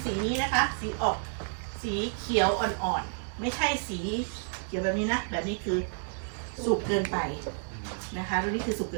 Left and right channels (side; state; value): left; silent; 58 dB below the other